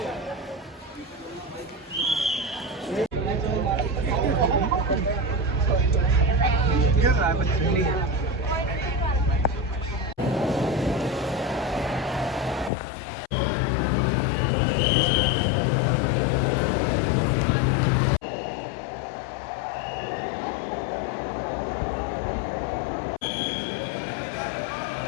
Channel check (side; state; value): right; drops out; at 12.7 s